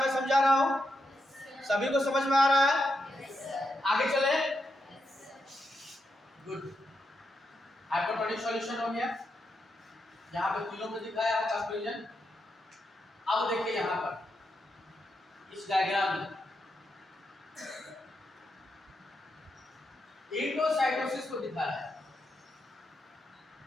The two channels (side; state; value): both; normal; correlation 0.84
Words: समझा रहा हूँ, सभी को समझ में आ रहा है, आगे चले। गुड, हाइपोटोनिक सॉल्यूशन हो गया, यहाँ पे तीनों में दिखाया है कंक्लूजन। अब देखिए यहाँ पर इस डायग्राम में एंडोसाइटोसिस को दिखा रहा है,